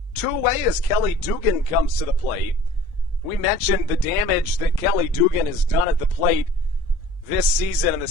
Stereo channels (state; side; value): normal; both; correlation 0.48